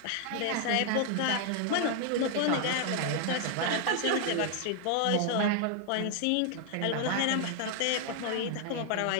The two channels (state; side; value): different; both; correlation 0.00